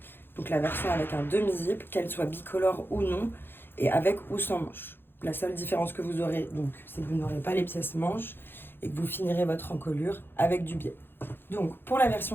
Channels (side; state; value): right; late; 0.10 ms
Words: donc la version avec un demi-zip, qu'elle soit bicolore ou non, et avec ou sans manche. La seule différence que vous aurez, donc, c'est que vous n'aurez pas les pièces manches et que vous finirez votre encolure avec du biais. Donc pour la